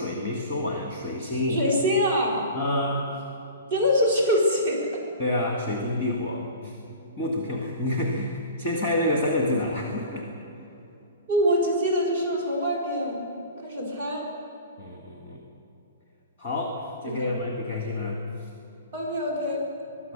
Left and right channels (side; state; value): both; inverted; correlation -0.39